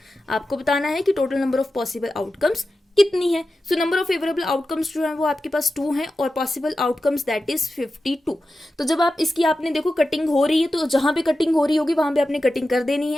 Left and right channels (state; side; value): normal; both; correlation 0.92